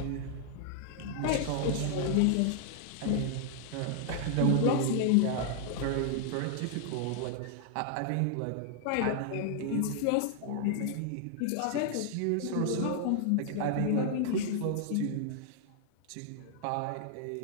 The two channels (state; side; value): different; both; correlation 0.00